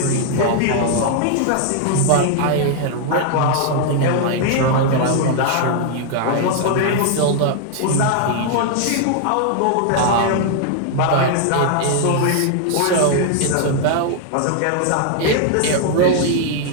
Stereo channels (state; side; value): different; both; correlation 0.00